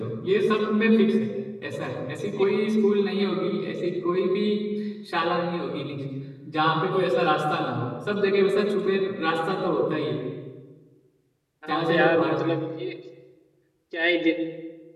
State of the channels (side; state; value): both; identical; correlation 1.00